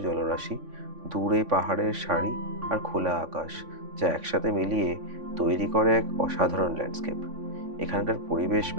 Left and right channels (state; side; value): late; left; 3.5 ms